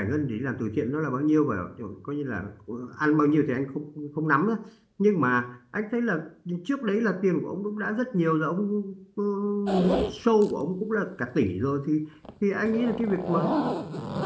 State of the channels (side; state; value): both; identical; correlation 1.00